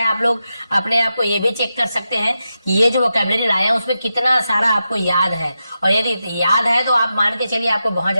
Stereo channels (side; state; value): both; inverted; correlation -0.89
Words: आप लोग अपने आप को ये भी चेक कर सकते हैं कि ये जो वोकैबुलरी लाए हैं उसमें कितना सारा आपको याद है। और यदि याद है तो आप मान के चलिए आपको बहुत